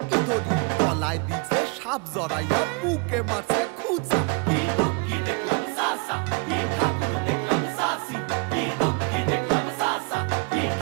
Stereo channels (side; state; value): left; quieter; 31.8 dB